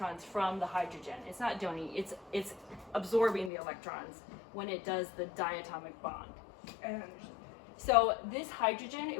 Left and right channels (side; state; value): right; drops out; at 3.5 s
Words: from the hydrogen. It's not donating. It's absorbing the electrons when it does the diatomic bond. I don't understand. So this hydrogen,